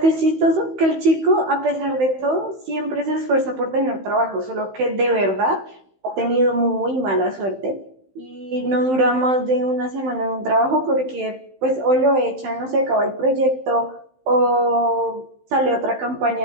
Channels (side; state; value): left; late; 15 ms